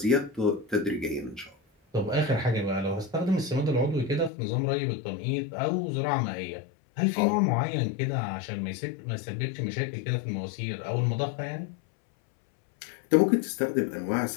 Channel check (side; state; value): right; drops out; at 4.3 s